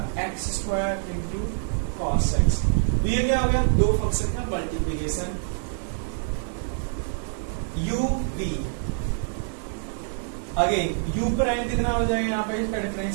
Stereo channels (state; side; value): silent; left; digital silence